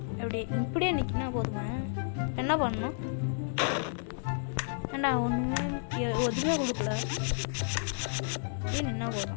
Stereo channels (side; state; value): right; silent; digital silence